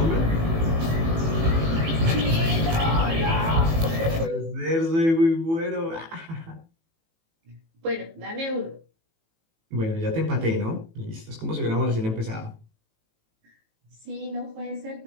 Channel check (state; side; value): late; left; 18 ms